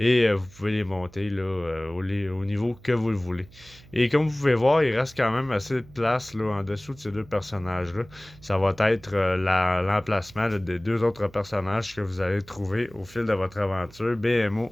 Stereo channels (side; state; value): right; noise; hum, 23 dB below the sound